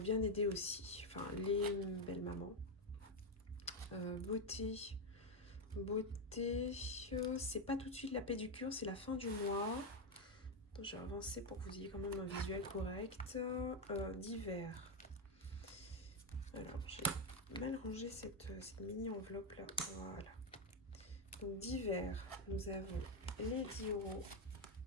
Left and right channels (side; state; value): both; normal; correlation 0.06